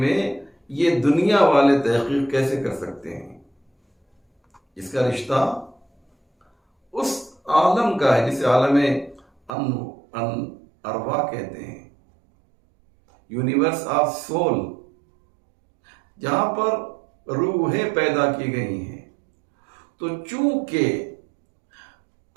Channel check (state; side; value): drops out; left; at 9.5 s